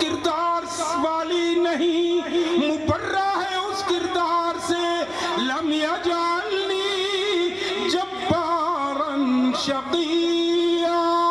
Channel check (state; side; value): noise; left; hum, 29 dB below the sound